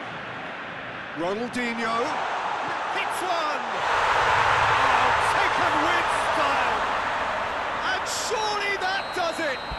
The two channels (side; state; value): both; identical; correlation 1.00